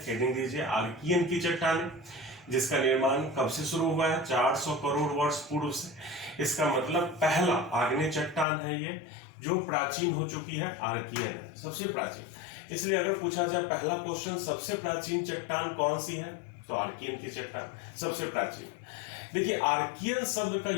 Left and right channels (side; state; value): right; drops out; at 8.5 s